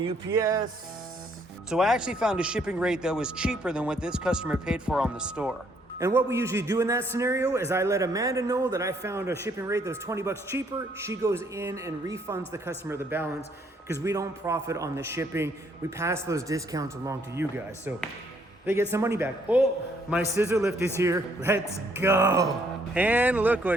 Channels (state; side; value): normal; both; correlation 0.68